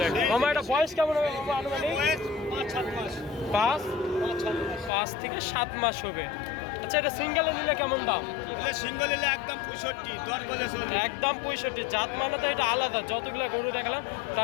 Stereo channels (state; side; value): drops out; right; at 4.9 s